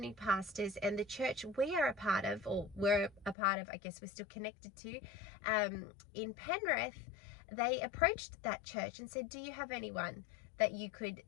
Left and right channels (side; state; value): right; drops out; at 3.4 s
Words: pastors. And the church we are a part of, I guess we're still connected to, in Penrith, they approached that church and said, do you have anyone that you could